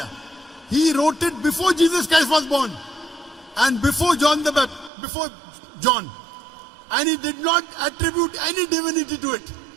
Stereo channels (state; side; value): drops out; left; at 4.9 s